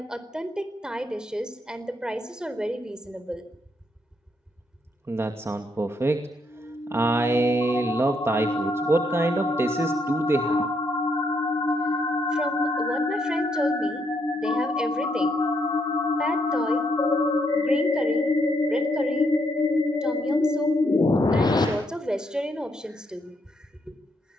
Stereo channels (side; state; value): both; normal; correlation 0.75